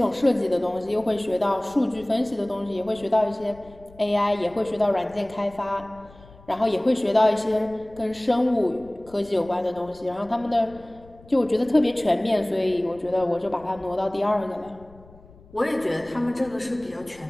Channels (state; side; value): noise; left; rumble, 24 dB below the sound